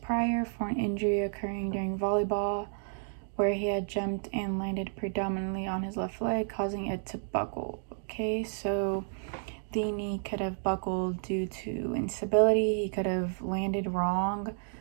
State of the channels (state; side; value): silent; left; digital silence